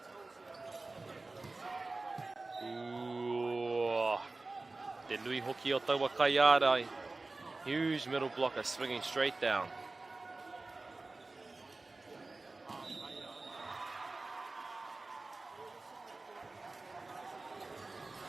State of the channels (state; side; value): quieter; left; 3.3 dB